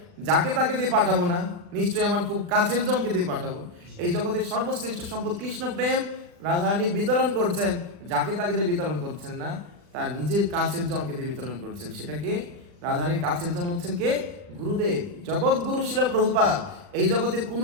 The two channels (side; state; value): left; late; 40 ms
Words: যাকে তাকে দিয়ে পাঠাবো না, নিশ্চয়ই আমার খুব কাছের জনকে দিয়ে পাঠাবো। এই জগতের সর্বশ্রেষ্ঠ সম্পদ কৃষ্ণ প্রেম রাধারানী বিতরণ করছেন, যাকে তাকে দিয়ে বিতরণ করছেন না, তার নিজের কাছের জনকে দিয়ে বিতরণ করছেন। সেটাকে রাধারানীর কাছের জন হচ্ছেন কে? গুরুদেব, জগৎ গুরু শিল প্রভুপাদ। এই জগতের